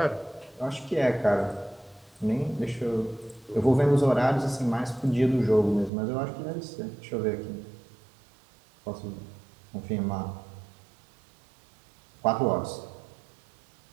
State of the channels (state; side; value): drops out; left; at 5.9 s